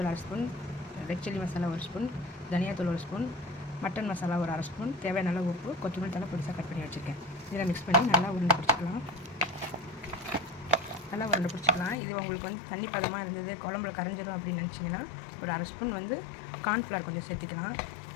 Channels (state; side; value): drops out; right; at 12.0 s